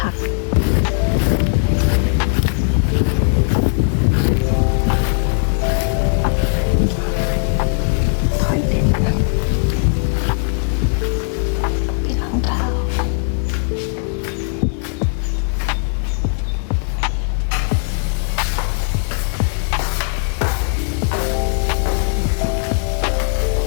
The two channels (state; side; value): silent; right; 65 dB below the other